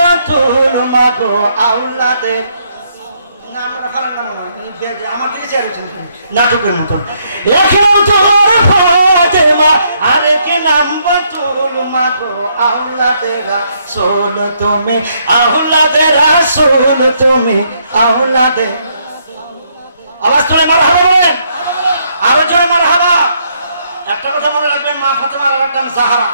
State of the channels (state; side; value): inverted; both; correlation -0.72